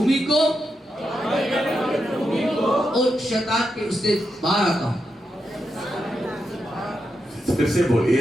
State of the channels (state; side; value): normal; both; correlation 0.85